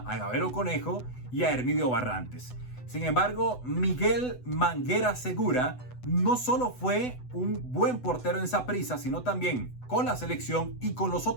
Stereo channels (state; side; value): late; right; 8.0 ms